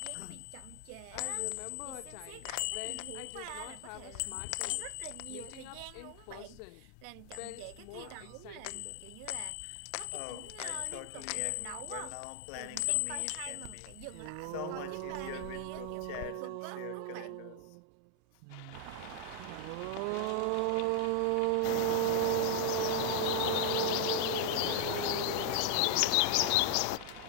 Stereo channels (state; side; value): different; both; correlation 0.00